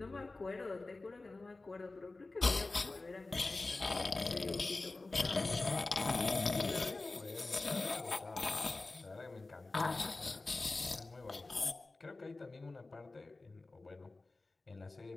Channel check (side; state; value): right; quieter; 3.3 dB